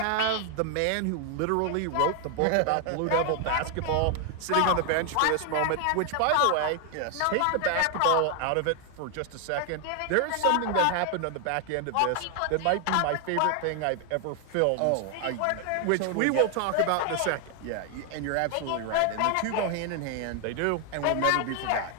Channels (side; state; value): both; different; correlation 0.00